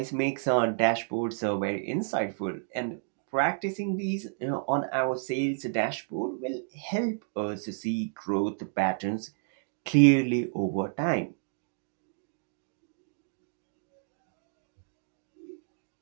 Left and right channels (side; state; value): left; silent; digital silence